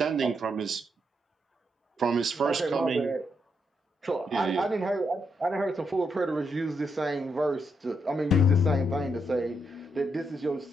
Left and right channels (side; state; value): both; normal; correlation 0.80